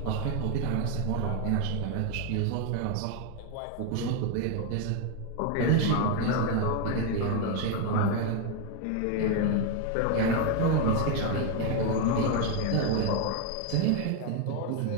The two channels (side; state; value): both; different; correlation 0.01